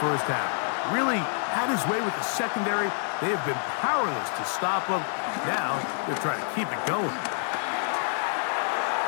half. Really had his way with the secondary. They have been powerless to stop him. Now they're trying to keep it going.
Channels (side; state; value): right; silent; 60 dB below the other